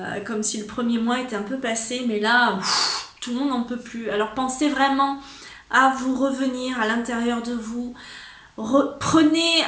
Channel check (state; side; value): identical; both; correlation 1.00